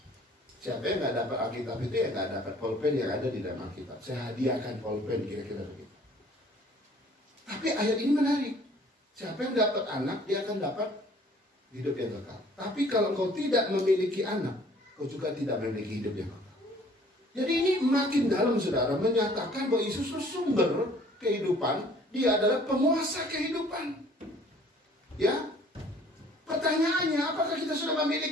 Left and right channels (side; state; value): both; normal; correlation 0.55